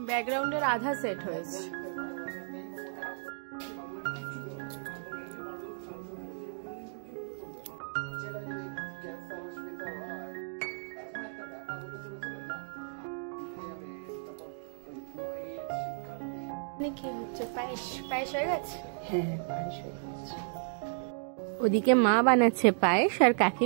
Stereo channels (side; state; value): left; silent; digital silence